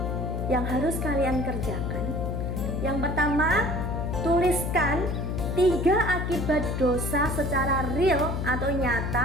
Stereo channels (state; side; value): noise; left; hum, 2 dB below the sound